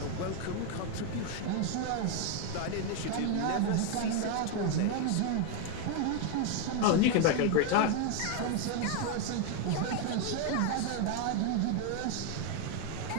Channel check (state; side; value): different; both; correlation 0.01